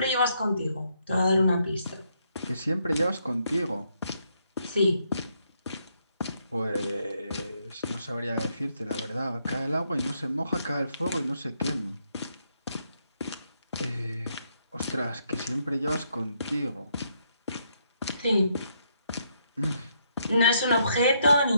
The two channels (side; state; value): both; inverted; correlation -0.75